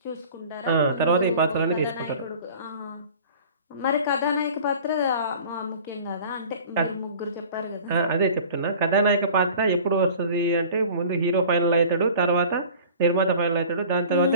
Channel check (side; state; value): both; inverted; correlation -0.44